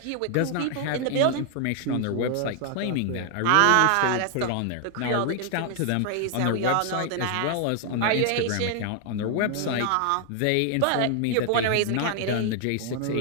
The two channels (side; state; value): both; different; correlation 0.00